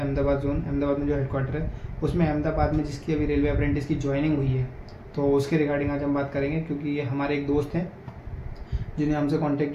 जोन, अहमदाबाद में जो हेडक्वार्टर है उसमें अहमदाबाद में जिसकी अभी रेलवे अप्रेंटिस की ज्वाइनिंग हुई है, तो उसके रिगार्डिंग आज हम बात करेंगे। क्योंकि ये हमारे एक दोस्त हैं जिन्हें हमसे कांटेक्ट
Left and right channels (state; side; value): identical; both; correlation 1.00